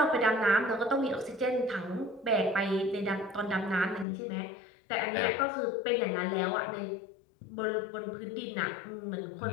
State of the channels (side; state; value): right; drops out; at 4.0 s